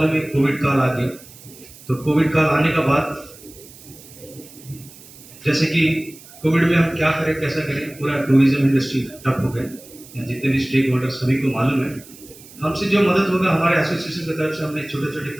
है कोविड काल आ गया। तो कोविड काल आने का बाद जैसे कि कोविड में हम क्या करें, कैसा करें, पूरा टूरिज्म इंडस्ट्री ठप हो गया। जितने भी स्टेक होल्डर सभी को मालूम है, हमसे जो मदद होगा हमारे एसोसिएशन की तरफ से हमने छोटे छोटे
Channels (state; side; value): noise; right; hiss, 20 dB below the sound